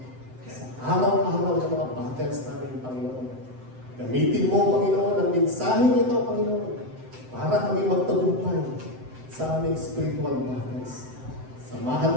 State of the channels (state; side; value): late; left; 7.8 ms